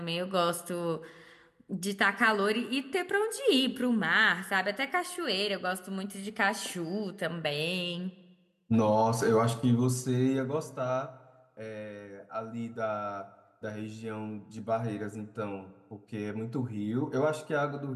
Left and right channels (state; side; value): identical; both; correlation 1.00